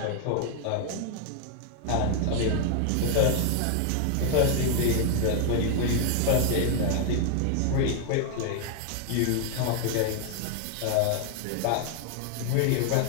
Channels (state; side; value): different; both; correlation 0.00